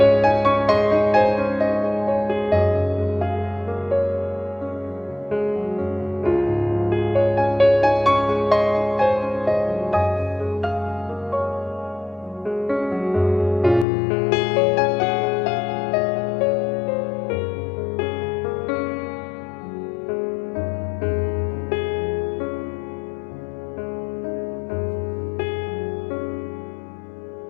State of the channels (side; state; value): right; drops out; at 13.9 s